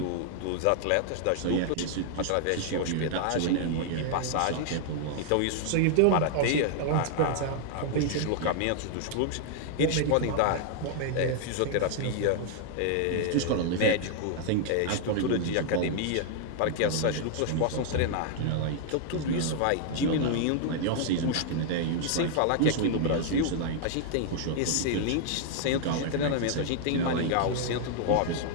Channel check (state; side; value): different; both; correlation 0.00